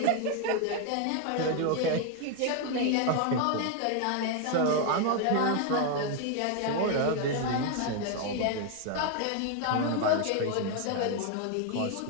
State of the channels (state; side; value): different; both; correlation 0.01